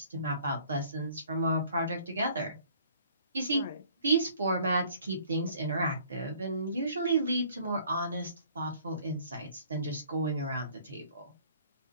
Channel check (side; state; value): both; inverted; correlation -0.56